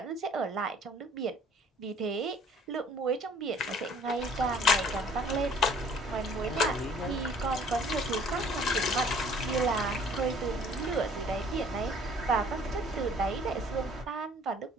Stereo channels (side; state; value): both; normal; correlation 0.54